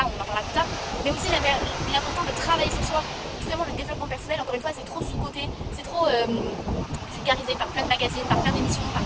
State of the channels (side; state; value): both; identical; correlation 1.00